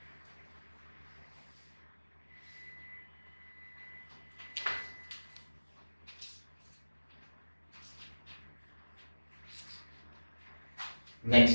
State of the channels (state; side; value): inverted; both; correlation -1.00